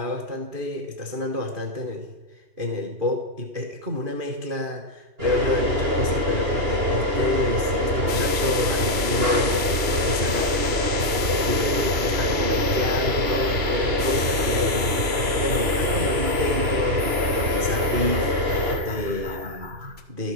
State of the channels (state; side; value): late; left; 2.8 ms